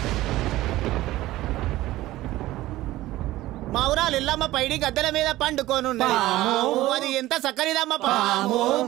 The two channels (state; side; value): quieter; left; 16.5 dB